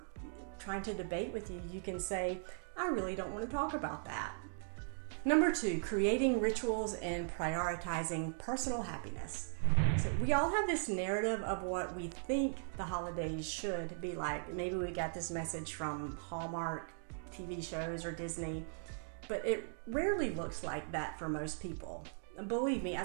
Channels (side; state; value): left; silent; digital silence